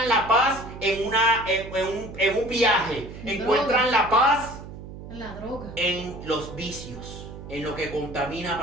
la paz en un viaje, encuentran la paz La droga. en los vicios, en lo que contamina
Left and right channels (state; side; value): noise; right; hum, 13 dB below the sound